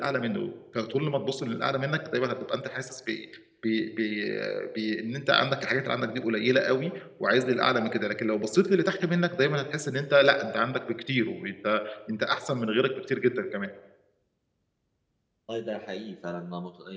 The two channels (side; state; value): both; identical; correlation 1.00